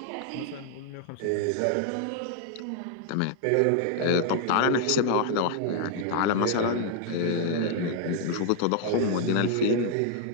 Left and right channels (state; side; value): different; both; correlation 0.00